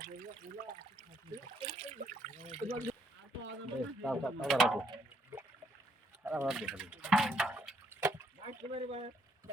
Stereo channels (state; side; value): normal; both; correlation 0.71